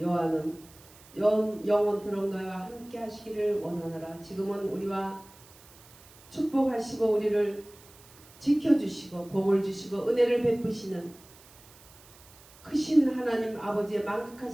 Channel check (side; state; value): right; noise; hiss, 23 dB below the sound